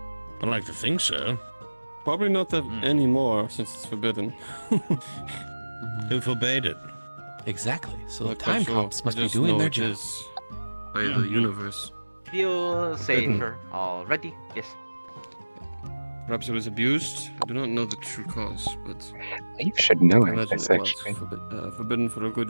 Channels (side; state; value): both; inverted; correlation -1.00